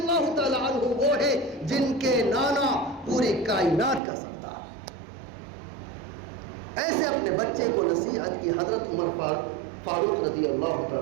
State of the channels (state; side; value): drops out; left; at 4.0 s